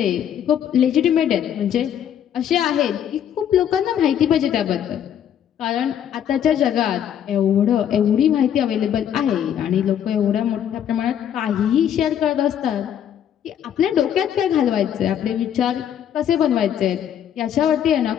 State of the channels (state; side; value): quieter; right; 9.6 dB